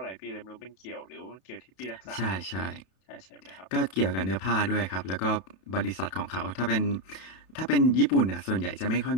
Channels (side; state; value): right; late; 32 ms